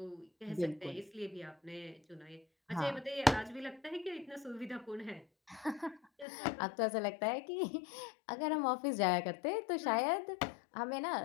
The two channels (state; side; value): drops out; right; at 6.2 s